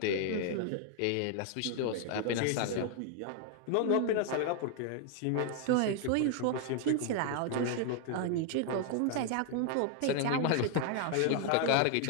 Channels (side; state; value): both; different; correlation 0.00